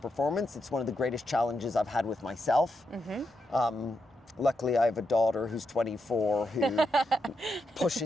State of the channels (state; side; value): normal; both; correlation 0.84